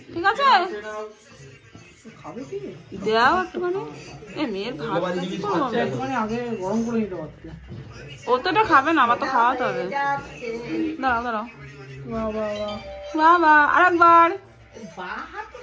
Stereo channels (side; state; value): both; identical; correlation 1.00